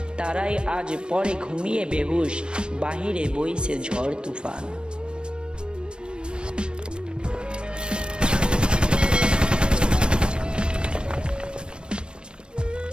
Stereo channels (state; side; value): late; left; 0.054 ms